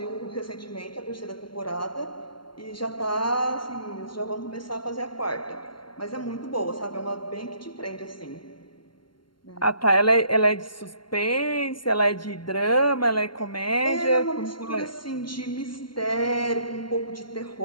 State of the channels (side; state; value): right; late; 0.72 ms